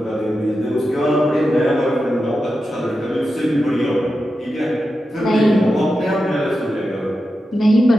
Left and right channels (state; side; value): normal; both; correlation 0.90